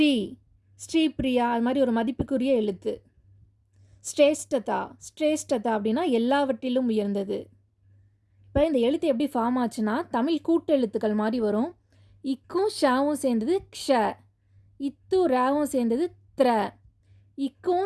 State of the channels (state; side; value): identical; both; correlation 1.00